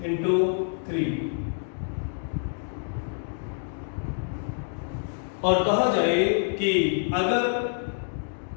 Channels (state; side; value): silent; right; digital silence